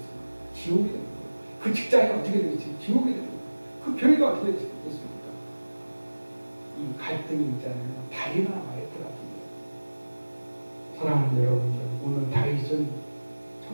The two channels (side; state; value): both; inverted; correlation -1.00